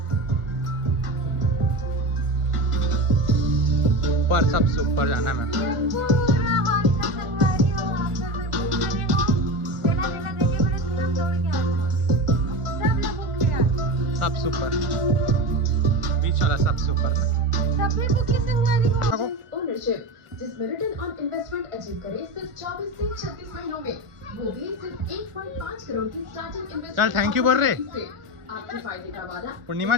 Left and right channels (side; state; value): left; late; 1.4 ms